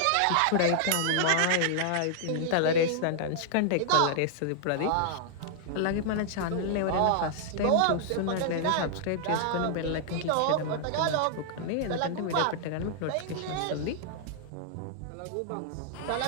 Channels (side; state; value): both; different; correlation -0.01